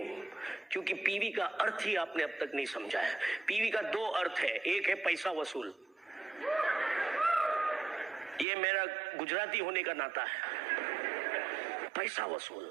क्योंकि PV का अर्थ ही आपने अब तक नहीं समझा है. PV का 2 अर्थ है. एक है पैसा वसूल, ये मेरा गुजराती होने का नाता है, पैसा वसूल.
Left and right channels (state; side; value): drops out; left; at 8.5 s